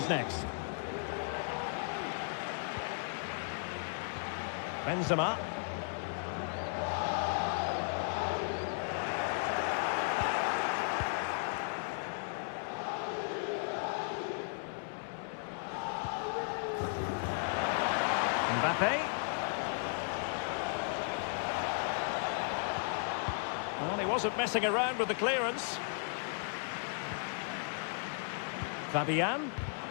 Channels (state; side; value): silent; right; digital silence